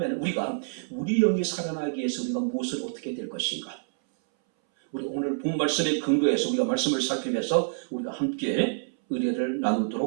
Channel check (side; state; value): left; silent; 60 dB below the other